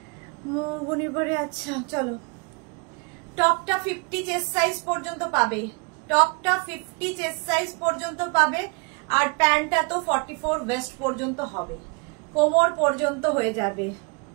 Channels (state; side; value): quieter; left; 32.8 dB